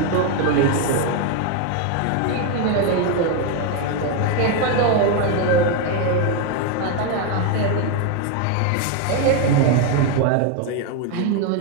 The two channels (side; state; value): both; different; correlation 0.01